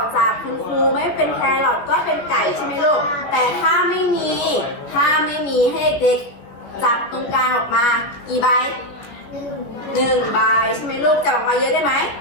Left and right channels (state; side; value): late; right; 17 ms